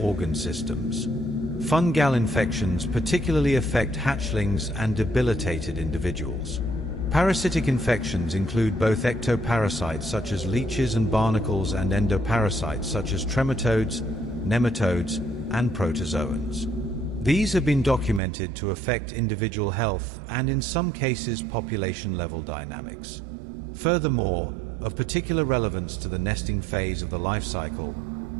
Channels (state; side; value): drops out; left; at 18.2 s